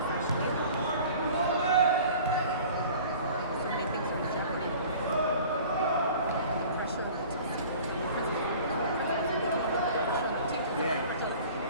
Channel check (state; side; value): inverted; both; correlation -0.45